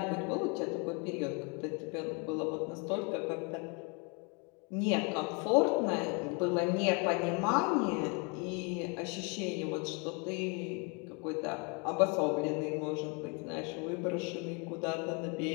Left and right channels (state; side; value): quieter; right; 32.7 dB